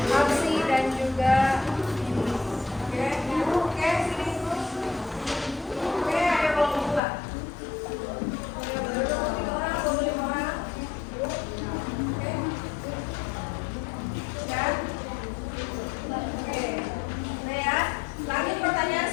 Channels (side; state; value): right; drops out; at 7.0 s